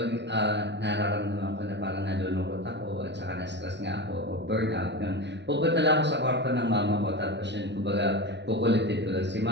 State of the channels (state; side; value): late; left; 0.51 ms